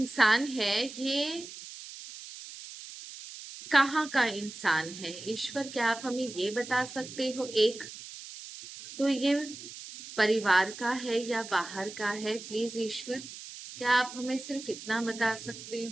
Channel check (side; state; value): right; noise; hiss, 13 dB below the sound